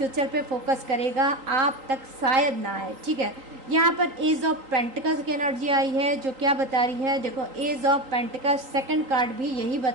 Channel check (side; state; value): left; late; 3.8 ms